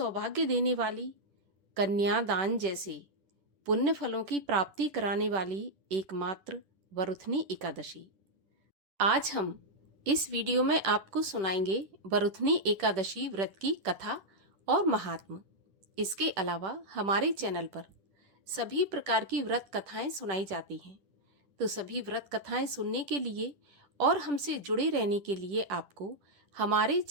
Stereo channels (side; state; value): left; late; 10 ms